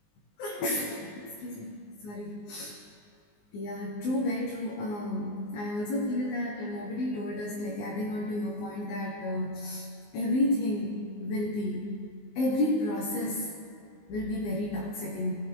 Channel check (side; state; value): right; late; 19 ms